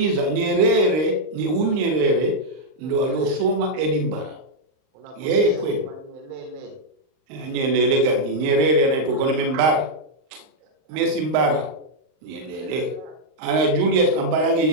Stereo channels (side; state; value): left; late; 39 ms